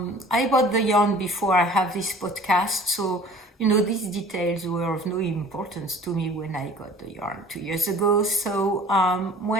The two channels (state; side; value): normal; both; correlation 0.47